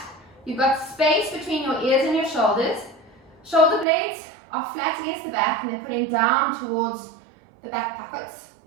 You've got space between your ears and your shoulders. Shoulder blades are flat against the back and they're putting down towards the back pockets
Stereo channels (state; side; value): drops out; left; at 3.9 s